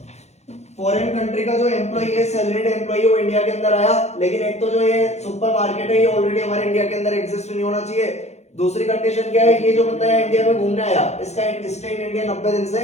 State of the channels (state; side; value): late; right; 0.32 ms